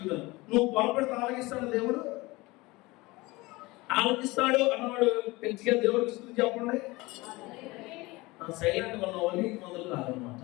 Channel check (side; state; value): right; quieter; 22.0 dB